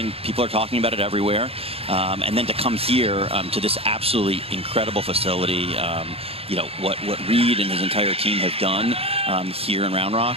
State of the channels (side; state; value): left; late; 0.28 ms